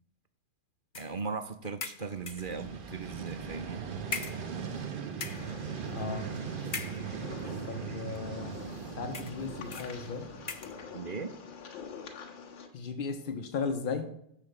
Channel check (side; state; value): right; late; 2.5 ms